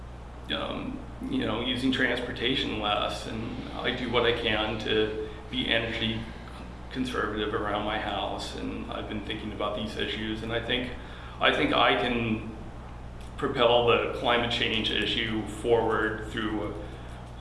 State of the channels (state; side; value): identical; both; correlation 1.00